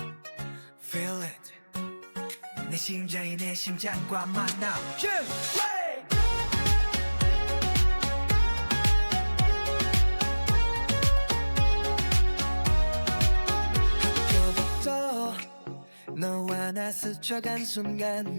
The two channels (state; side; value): inverted; both; correlation -1.00